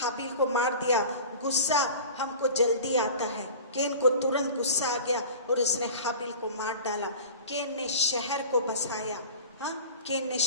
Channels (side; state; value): both; inverted; correlation -0.37